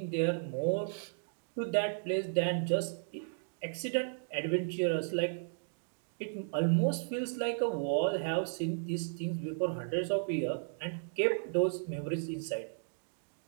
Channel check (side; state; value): left; silent; digital silence